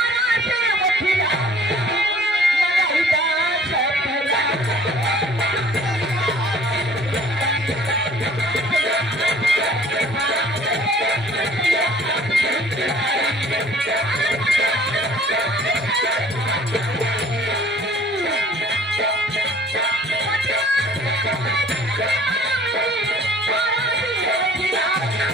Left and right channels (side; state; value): both; normal; correlation 0.52